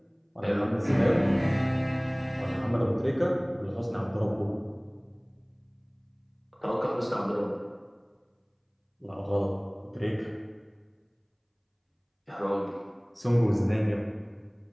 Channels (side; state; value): both; identical; correlation 1.00